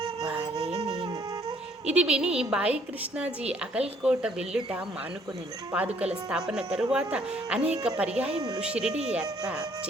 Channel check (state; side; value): normal; both; correlation 0.63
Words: వారే నేను. ఇది విని బాయి కృష్ణాజీ అకల్కోట వెళ్ళుట మానుకొనెను. పాదుకల స్థాపన తరువాత అనేక పర్యాయములు షిరిడి యాత్ర